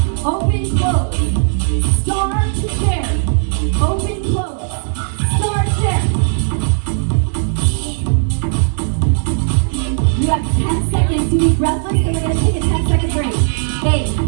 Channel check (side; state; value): left; silent; digital silence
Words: open, close. Star to chair, open, close. Star chair. You have 10 seconds to be breathless, and we're going to take a 10-second break. 8,